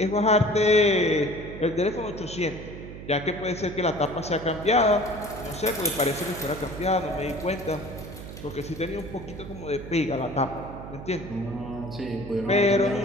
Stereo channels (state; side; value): noise; right; hum, 12 dB below the sound